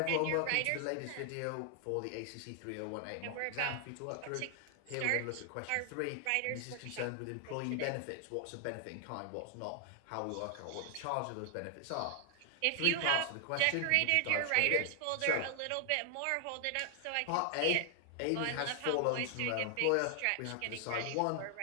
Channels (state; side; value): different; both; correlation 0.00